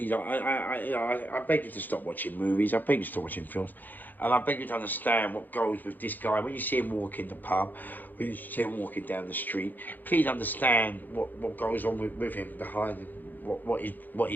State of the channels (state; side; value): late; right; 0.086 ms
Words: I beg you to stop watching movies. I beg you to stop watching films. And I beg you to understand what goes with this guy. When you see him walk in the pub, when you see him walking down the street, please understand what goes on with him behind him, what